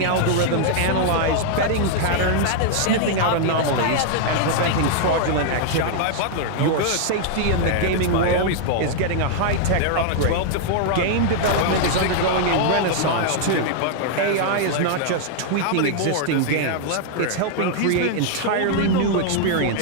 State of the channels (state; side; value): different; both; correlation -0.01